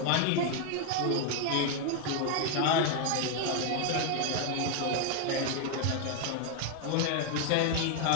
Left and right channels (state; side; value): different; both; correlation 0.01